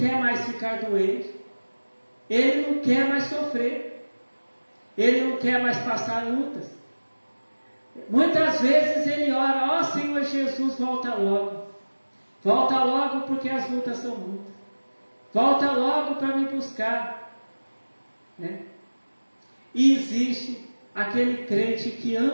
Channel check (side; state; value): both; inverted; correlation -1.00